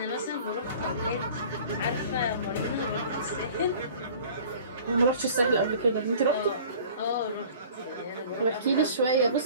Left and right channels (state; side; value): inverted; both; correlation -0.46